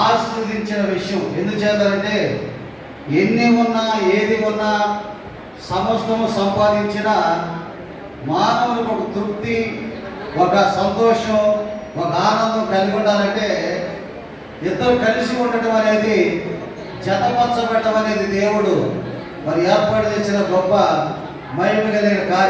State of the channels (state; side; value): identical; both; correlation 1.00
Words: ఆశీర్వదించిన విషయం. ఎందుచేతంటే ఎన్ని ఉన్నా ఏది ఉన్నా సమస్తము సంపాదించిన మానవునికి ఒక తృప్తి, ఒక సంతోషం, ఒక ఆనందం కలిగి ఉండాలంటే ఇద్దరు కలిసి ఉండటం అనేది, జతపరచబడటం అనేది దేవుడు మరి ఏర్పాటు చేసిన గొప్ప మహిమ కలిగిన